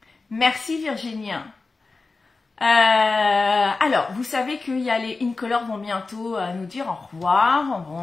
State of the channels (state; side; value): quieter; right; 3.9 dB